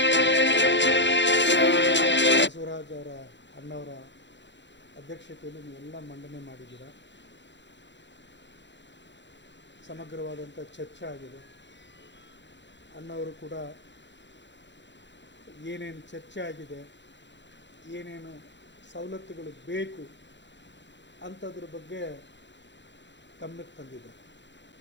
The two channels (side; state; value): right; late; 0.52 ms